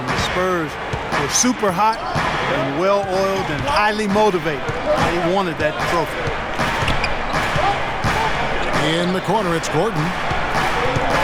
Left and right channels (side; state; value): both; identical; correlation 1.00